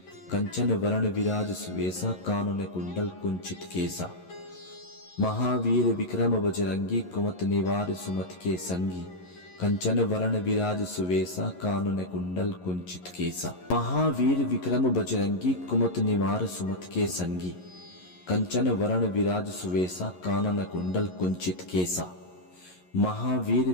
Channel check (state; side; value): late; right; 11 ms